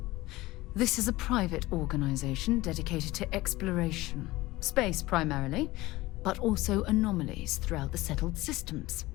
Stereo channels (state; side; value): quieter; right; 19.2 dB